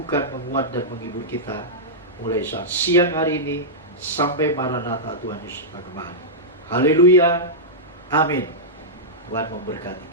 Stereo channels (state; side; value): normal; both; correlation -0.11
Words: menguat, dan menghibur kita mulai saat siang hari ini sampai Maranatha Tuhan Yesus kembali. Haleluya, amin. Tuhan memberkati.